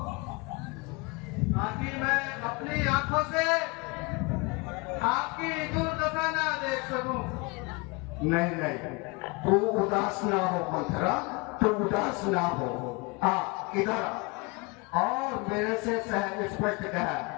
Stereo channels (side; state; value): right; quieter; 27.9 dB